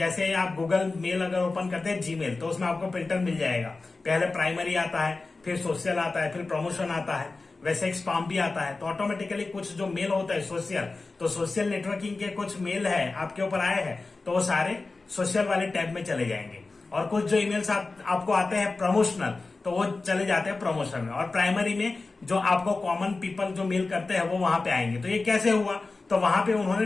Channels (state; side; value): quieter; right; 3.6 dB